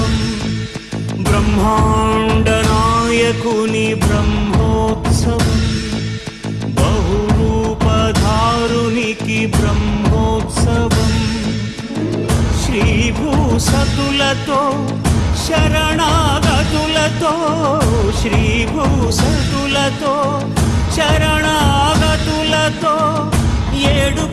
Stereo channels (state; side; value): identical; both; correlation 1.00